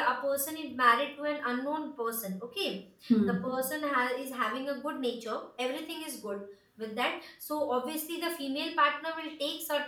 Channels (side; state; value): both; identical; correlation 1.00